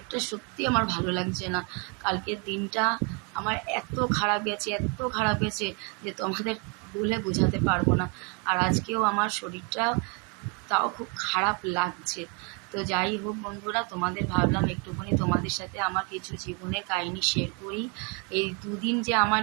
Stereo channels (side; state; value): left; quieter; 34.4 dB